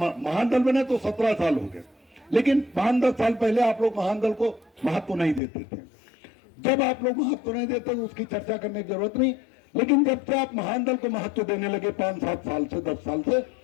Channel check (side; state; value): right; drops out; at 5.4 s